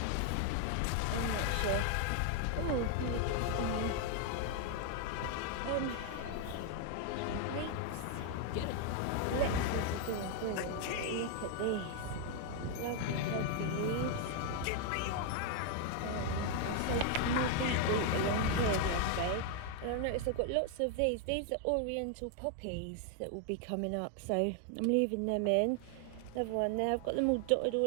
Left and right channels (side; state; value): both; different; correlation 0.00